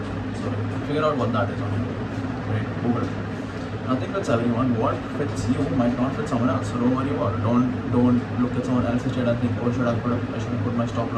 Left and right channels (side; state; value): both; identical; correlation 1.00